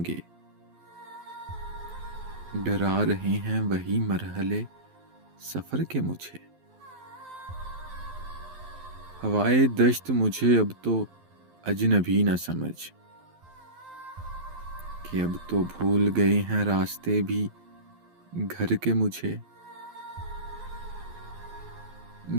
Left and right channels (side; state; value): left; late; 12 ms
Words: डरा रहे हैं वही मरहले सफर के मुझे। हवाए दश्त मुझे अब तो अजनबी न समझ, कि अब तो भूल गए हैं रास्ते भी घर के मुझे।